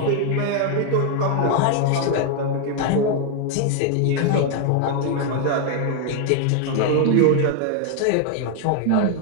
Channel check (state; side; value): different; both; correlation 0.00